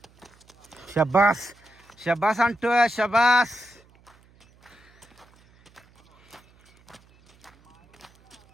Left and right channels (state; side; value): noise; right; hum, 30 dB below the sound